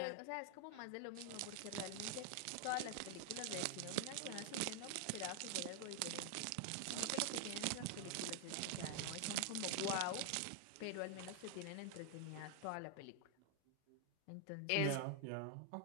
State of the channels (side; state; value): both; different; correlation 0.00